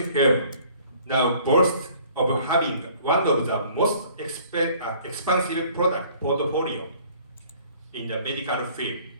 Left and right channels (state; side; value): inverted; both; correlation -0.55